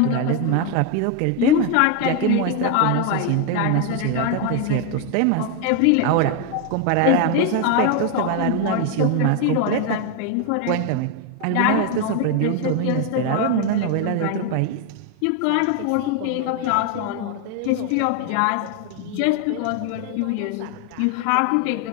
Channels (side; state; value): both; different; correlation 0.01